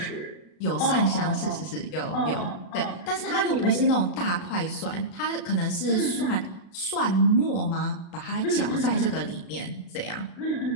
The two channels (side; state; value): right; late; 35 ms